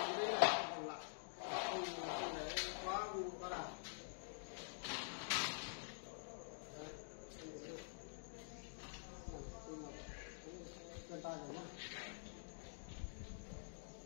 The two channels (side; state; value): right; silent; digital silence